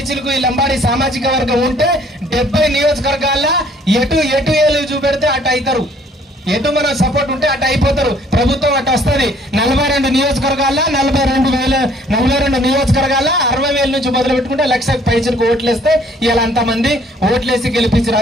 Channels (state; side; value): normal; both; correlation 0.60